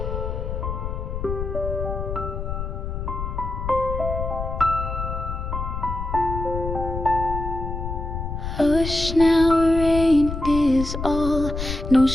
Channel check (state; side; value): noise; left; rumble, 5 dB below the sound